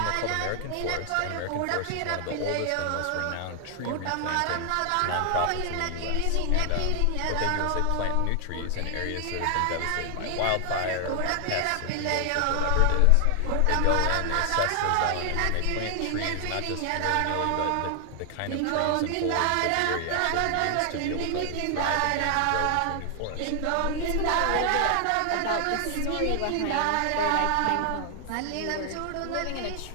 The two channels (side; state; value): both; different; correlation 0.00